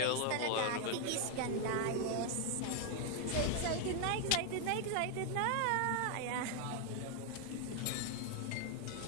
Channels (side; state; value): both; different; correlation 0.00